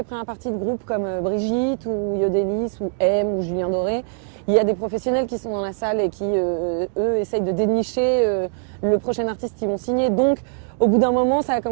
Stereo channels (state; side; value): silent; left; digital silence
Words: premières parties de groupes comme Brigitte ou Yodelis ou M ou Julien Doré, il y a des professionnels qui sont dans la salle et qui, eux, essayent de dénicher le prochain artiste qu'ils vont signer. Donc, au bout d'un moment, ça a